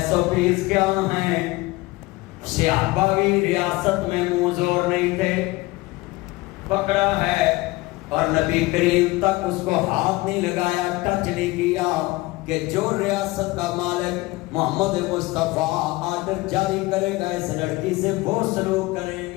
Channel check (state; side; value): quieter; right; 20.9 dB